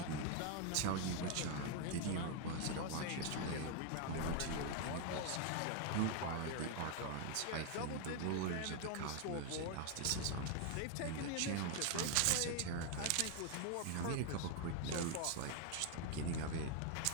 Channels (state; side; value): different; both; correlation 0.01